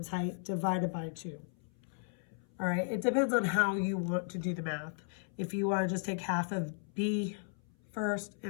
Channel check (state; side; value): silent; right; 54 dB below the other